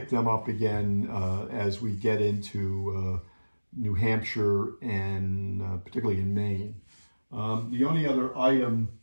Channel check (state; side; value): inverted; both; correlation -1.00